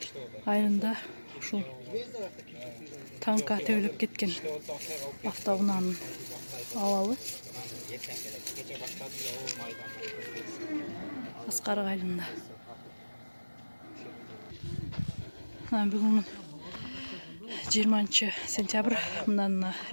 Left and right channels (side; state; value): both; inverted; correlation -1.00